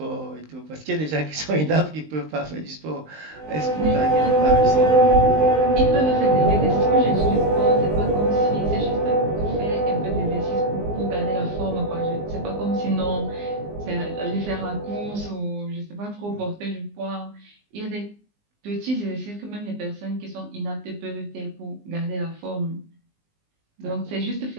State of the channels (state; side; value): late; left; 19 ms